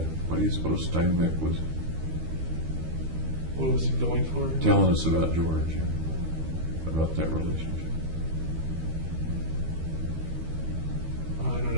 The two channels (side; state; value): left; late; 13 ms